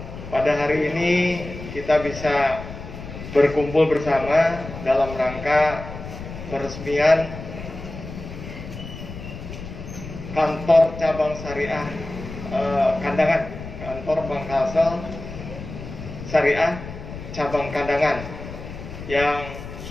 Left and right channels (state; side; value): noise; left; rumble, 11 dB below the sound